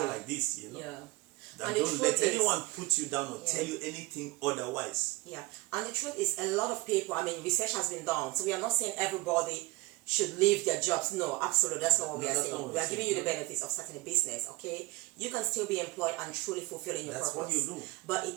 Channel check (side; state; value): left; quieter; 22.5 dB